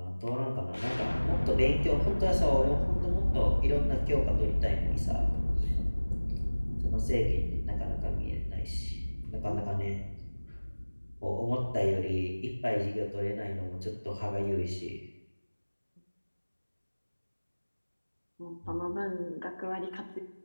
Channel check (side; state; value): both; inverted; correlation -1.00